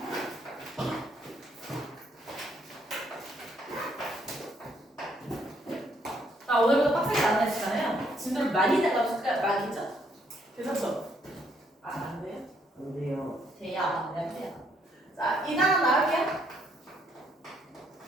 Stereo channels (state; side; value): normal; both; correlation 0.70